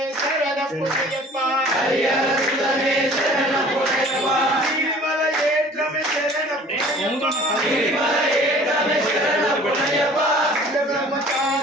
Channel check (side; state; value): both; normal; correlation 0.49